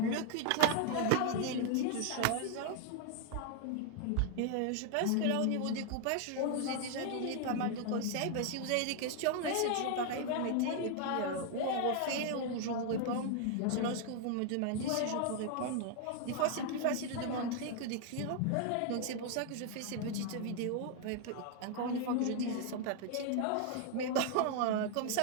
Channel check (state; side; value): different; both; correlation 0.00